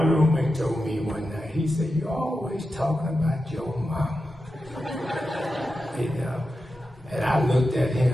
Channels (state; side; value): normal; both; correlation 0.90